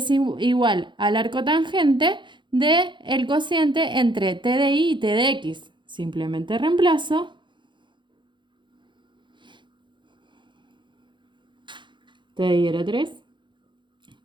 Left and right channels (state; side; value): late; left; 0.23 ms